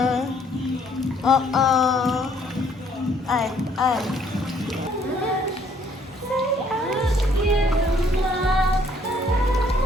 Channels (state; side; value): normal; both; correlation 0.64